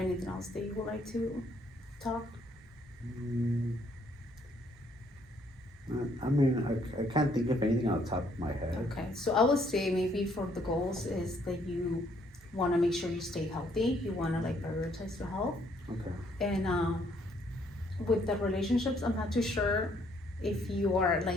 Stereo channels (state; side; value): normal; both; correlation 0.67